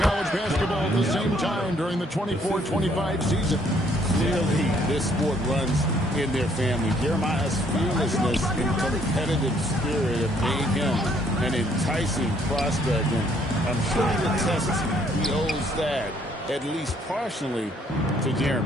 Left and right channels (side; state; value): both; normal; correlation 0.65